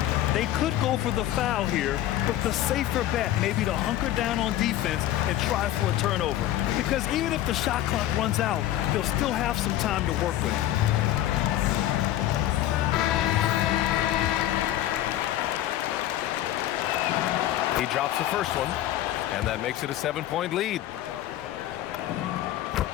They could go for the foul here, but the safer bet may be to hunker down on defense and try for a turnover. Because even if the shot clock runs out, they'll still have some time to work with. He drops the first one, and that makes it a 7-point lead.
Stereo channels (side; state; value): right; quieter; 13.3 dB